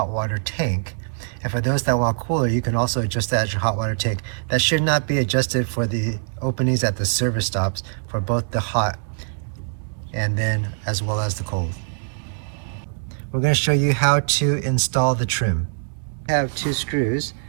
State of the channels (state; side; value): silent; left; 64 dB below the other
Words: water tank. And for those that want cooler, you can also adjust that at your hot water tank. That should not be adjusted for the openings at the service stops for both the hot and then as well as the cold. We're going to show you how to install the trim. We have 2 screws